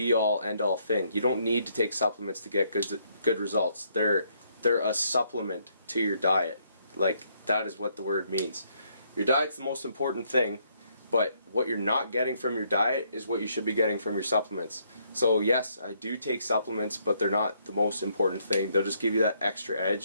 end-all thing. You don't need to take supplements to get good results. They're a supplement to your diet. Like, that is what the word means. Your diet's the most important thing, but what you're not getting from your diet is what you should be getting from your supplements. So yes, I do take supplements, but they're not the most important thing. They'll just give you that extra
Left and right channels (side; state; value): both; inverted; correlation -0.71